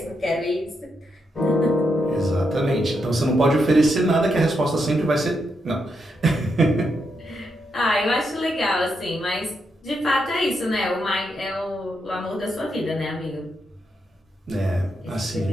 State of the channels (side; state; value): both; normal; correlation 0.82